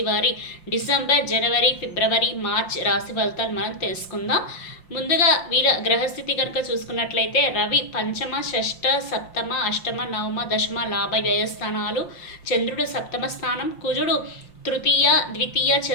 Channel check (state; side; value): late; right; 5.7 ms